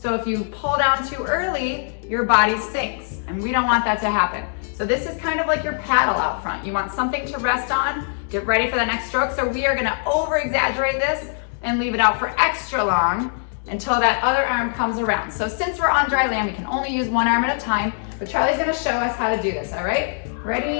if you pull down too early, your body sinks, and we don't want that to happen. So this is kind of like your paddle out front. You want something to rest on, get ready for the next stroke. So we are gonna over-exaggerate this and leave it out for extra long until that other arm comes around. So since we're on dry land, we can only use one arm at a time, but Charlie's gonna show us how to do this, all right?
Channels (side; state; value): right; silent; digital silence